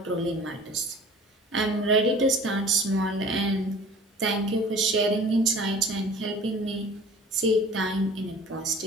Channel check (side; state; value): both; normal; correlation 0.45